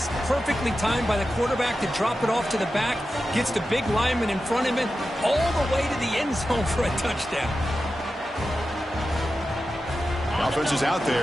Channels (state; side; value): normal; both; correlation 0.92